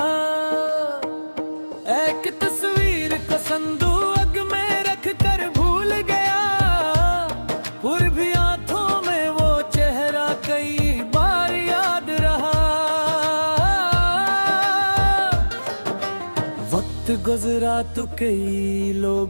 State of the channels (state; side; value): inverted; both; correlation -1.00